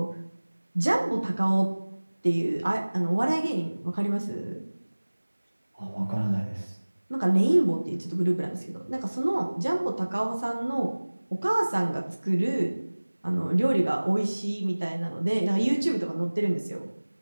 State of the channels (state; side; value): inverted; both; correlation -1.00